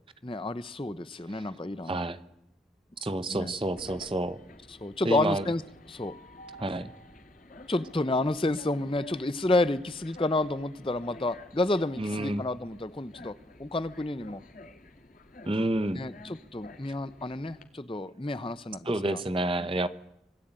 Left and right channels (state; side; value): normal; both; correlation 0.70